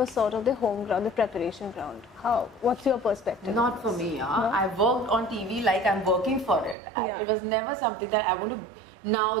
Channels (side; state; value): left; drops out; at 6.8 s